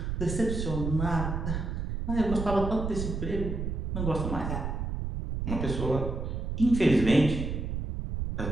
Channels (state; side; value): noise; right; rumble, 3 dB below the sound